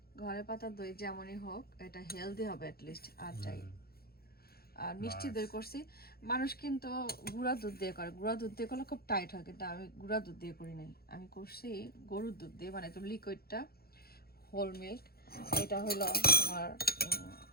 ঘরে পাতা দই যেমনই হোক, এটা হেলদি হবে অ্যাটলিস্ট, আর চাই। আর মিষ্টি দই করছি, মানুষ কিন্তু গুঁড়া দুধ দিয়ে করে, গুঁড়া দুধ দিয়ে করলে খুব টাইট হয়, কিন্তু আমি গুঁড়া দুধ দিয়ে করি নাই, আমি করছি গরুর দুধ দিয়ে, মানে একদম লিকুইডটা, হোল মিল্ক। এটা হলো তোমার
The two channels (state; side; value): late; right; 0.45 ms